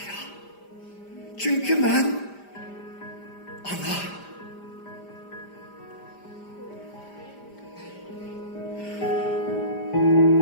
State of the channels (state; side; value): late; right; 5.0 ms